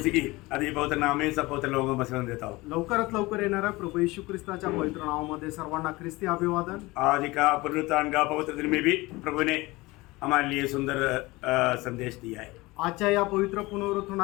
की आदि पवित्र नाम में सब पवित्र लोगों को वचन देता हूँ। लवकरात लवकर येणाऱ्या प्रभू येशू ख्रिस्ताच्या पवित्र नावामध्ये सर्वांना ख्रिस्ती अभिवादन। आज का पुनरुत्थान का पवित्र दिन में भी प्रभु ने हमारे लिए सुंदर संदेश दिया है। आजच्या या पवित्र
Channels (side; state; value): right; quieter; 21.5 dB